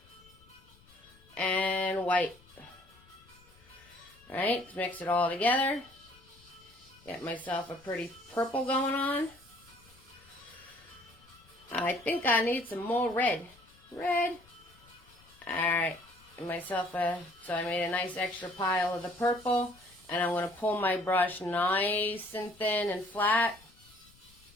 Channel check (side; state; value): left; noise; rumble, 27 dB below the sound